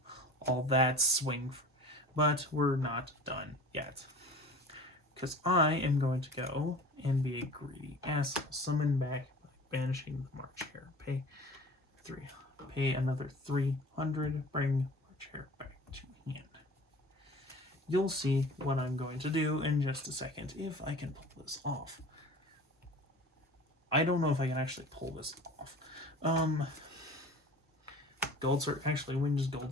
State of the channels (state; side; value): normal; both; correlation 0.41